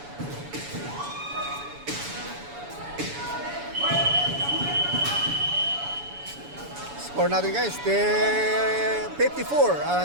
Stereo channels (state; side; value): late; left; 7.0 ms